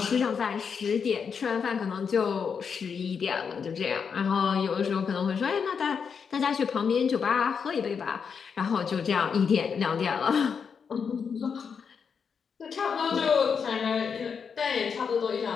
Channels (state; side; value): quieter; right; 6.3 dB